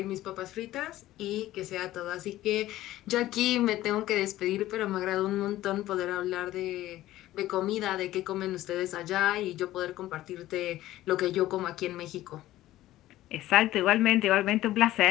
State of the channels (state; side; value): quieter; right; 15.1 dB